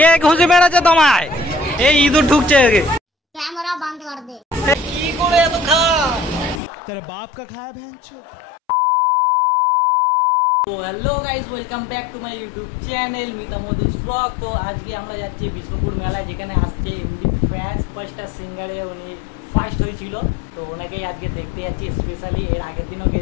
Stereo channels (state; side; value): drops out; right; at 6.6 s